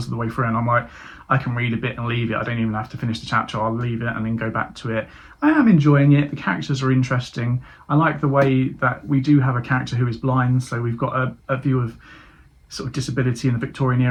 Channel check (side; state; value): both; identical; correlation 1.00